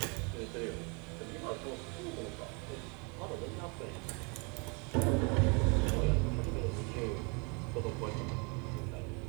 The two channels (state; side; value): quieter; left; 33.0 dB